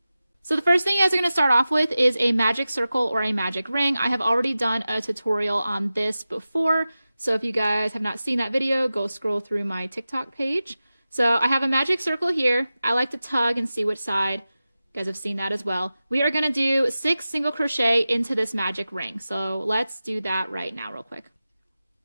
So the first thing you guys are going to start off with is a magic circle or a magic ring. I have already done a tutorial on this before, so if you guys have not seen that video, go scroll through my TikTok page. So I have a magic circle here. I like to tug and see which side. You guys have seen that as well. We are going to do 6 single crochet into this magic ring. So let's do that right now real quick.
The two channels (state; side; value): inverted; both; correlation -0.95